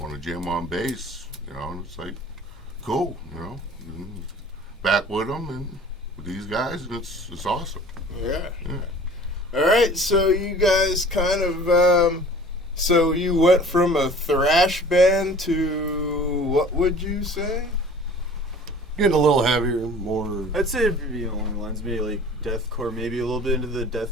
jam on bass? And it's like, cool, back with him and with these guys, and it's awesome. Yeah. All right, so you guys kind of, so you went from a thrash band to, what would you say? Getting a little heavier, more. I'd say it'd be along the lines, maybe like deathcore, maybe a little bit into the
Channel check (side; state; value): both; normal; correlation 0.47